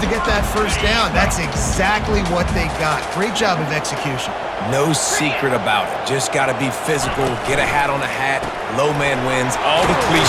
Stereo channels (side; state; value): both; identical; correlation 1.00